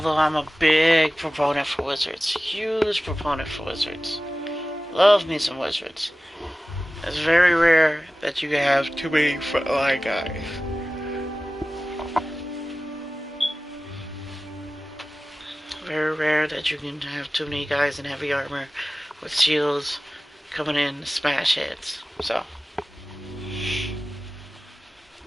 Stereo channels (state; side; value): normal; both; correlation 0.96